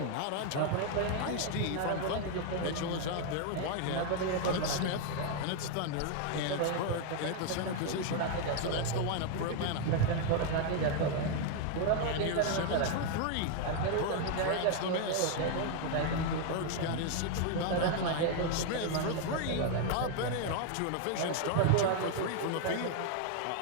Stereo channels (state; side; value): different; both; correlation 0.00